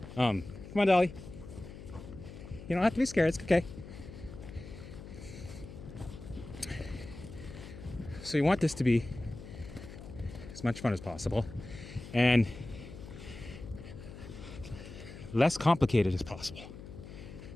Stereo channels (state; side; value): noise; left; hum, 13 dB below the sound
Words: Come on, Dolly. You don't have to be scared. It's okay. So you want this to be as much fun as possible and less complicated as possible.